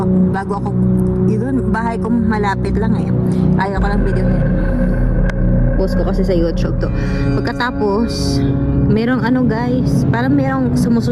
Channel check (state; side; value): identical; both; correlation 1.00